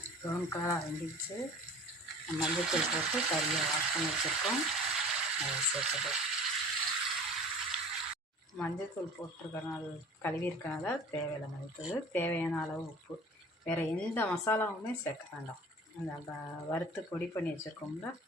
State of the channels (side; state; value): both; normal; correlation 0.43